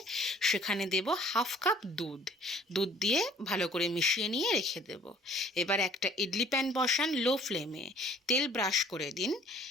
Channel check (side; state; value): both; normal; correlation 0.56